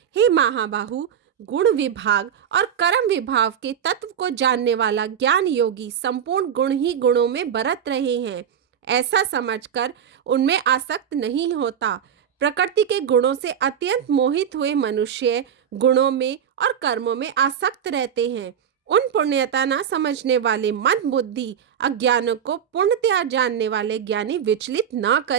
हे महाबाहु, गुण विभाग और कर्म विभाग के तत्व को जानने वाला ज्ञान योगी संपूर्ण गुण ही गुणों में बरत रहे हैं, ऐसा समझकर उनमें आसक्त नहीं होता। प्रकृति के गुणों से अत्यंत मोहित हुए मनुष्य गुणों में और कर्मों में आसक्त रहते हैं। उन पुण्यता न समझने वाले मंद बुद्धि अज्ञानों को पूर्णतया जानने वाले ज्ञानी विचलित न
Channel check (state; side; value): quieter; left; 8.5 dB